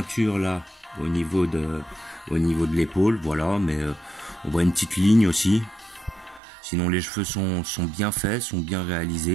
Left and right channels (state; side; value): drops out; left; at 6.4 s